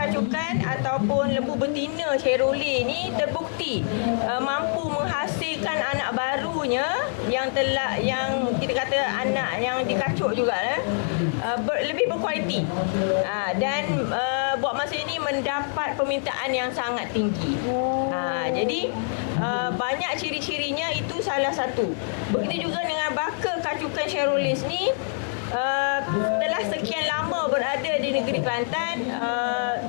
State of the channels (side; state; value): right; silent; 62 dB below the other